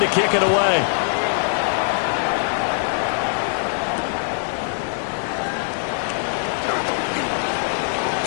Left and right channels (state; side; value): silent; right; digital silence